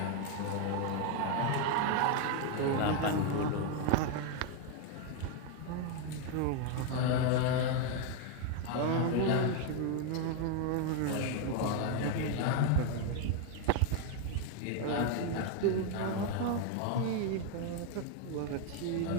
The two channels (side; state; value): both; different; correlation 0.01